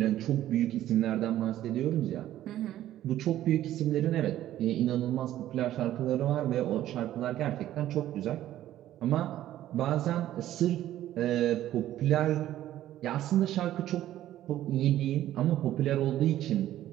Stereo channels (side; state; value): left; quieter; 13.1 dB